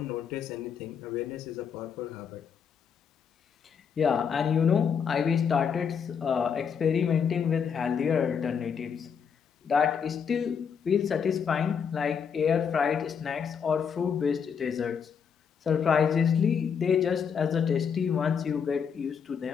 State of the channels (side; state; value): right; quieter; 6.9 dB